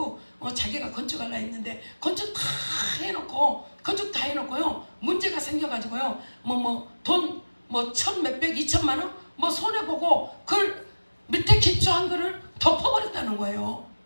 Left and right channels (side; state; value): both; inverted; correlation -1.00